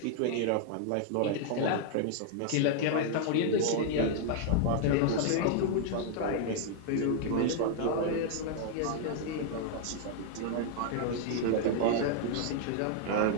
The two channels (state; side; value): different; both; correlation 0.00